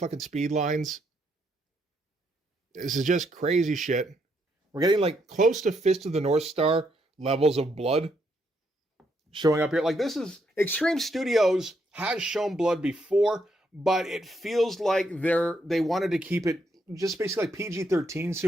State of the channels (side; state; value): both; normal; correlation 0.76